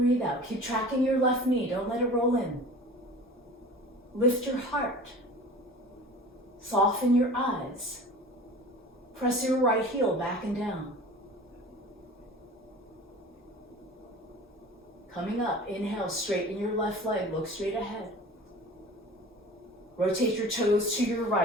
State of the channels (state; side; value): normal; both; correlation 0.40